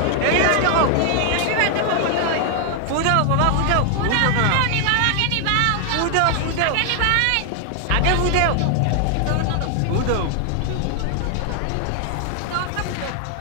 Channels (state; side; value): different; both; correlation 0.00